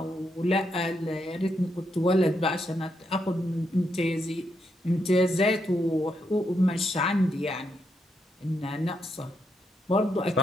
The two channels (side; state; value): both; normal; correlation 0.80